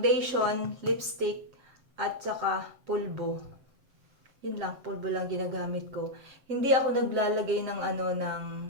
lipstick, at saka pulbo. Yun lang, pulbo lang ginagamit ko. Hindi ako naglalagay ng ng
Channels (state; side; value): late; left; 7.7 ms